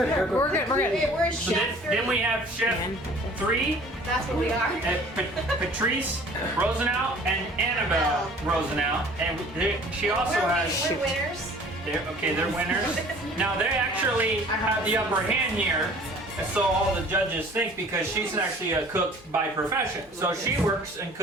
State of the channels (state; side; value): normal; both; correlation 0.50